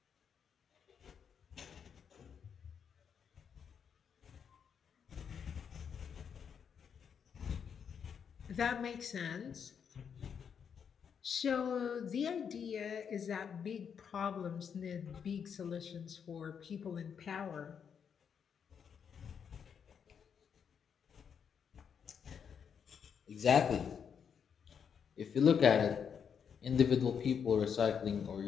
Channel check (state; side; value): quieter; right; 7.2 dB